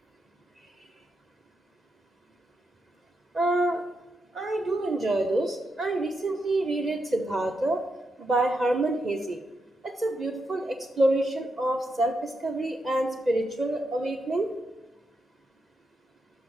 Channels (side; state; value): both; normal; correlation 0.84